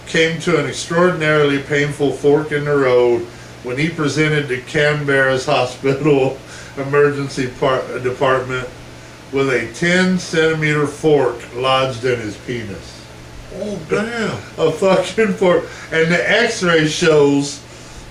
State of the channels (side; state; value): both; identical; correlation 1.00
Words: came to an extraordinarily painful fork in the road when he presented to Canberra's hospital emergency department with a 10-centimeter fork lodged in his penis. Oh, damn. A fucking fork. And the x-ray shows